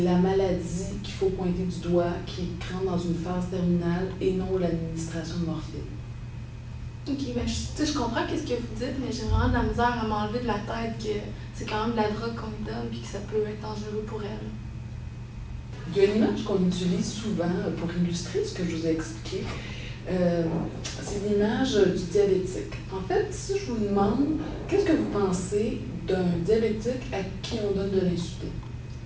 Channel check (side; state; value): both; identical; correlation 1.00